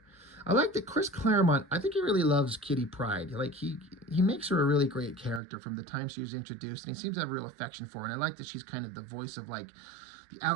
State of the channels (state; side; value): drops out; left; at 5.4 s